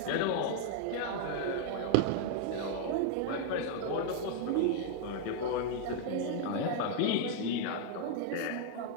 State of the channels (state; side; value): different; both; correlation 0.00